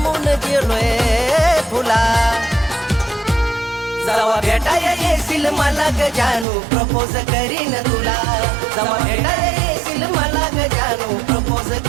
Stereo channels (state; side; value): drops out; left; at 6.5 s